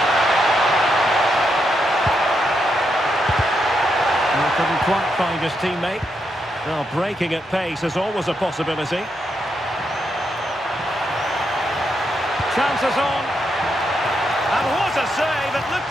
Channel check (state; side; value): normal; both; correlation 0.81